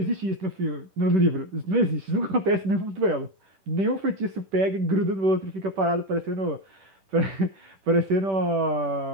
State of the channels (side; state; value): left; late; 10 ms